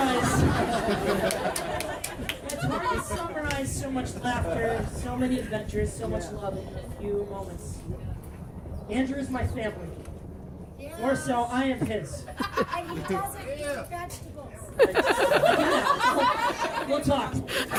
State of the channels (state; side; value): identical; both; correlation 1.00